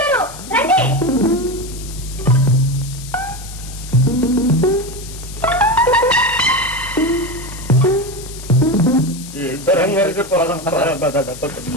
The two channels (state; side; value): noise; left; hiss, 15 dB below the sound